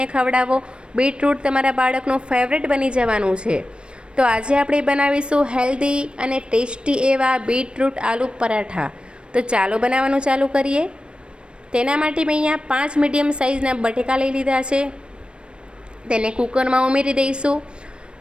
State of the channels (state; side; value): late; left; 0.056 ms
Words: ખવડાવો। બીટરૂટ તમારા બાળકનું ફેવરેટ બની જવાનું છે। તો આજે આપણે બનાવીશું હેલ્ધી અને ટેસ્ટી એવા બીટરૂટ આલુ પરાઠા। તો ચાલો બનાવવાનું ચાલુ કરીએ। તેના માટે મેં અહીંયા 5 મીડિયમ સાઇઝના બટેકા લઈ લીધા છે। તેને કુકરમાં ઉમેરી દઈશું।